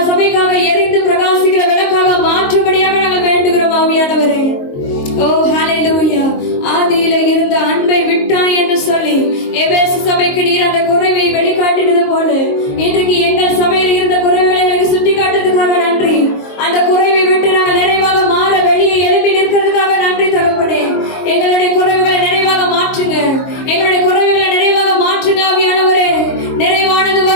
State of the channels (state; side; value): late; right; 22 ms